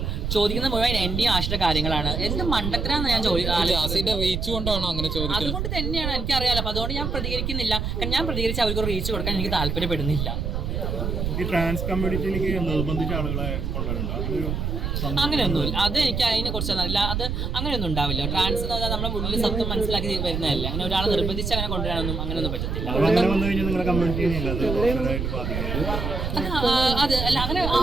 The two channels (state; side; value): noise; right; rumble, 2 dB below the sound